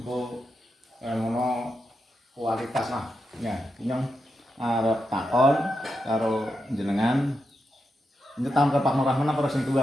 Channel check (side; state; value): both; normal; correlation 0.87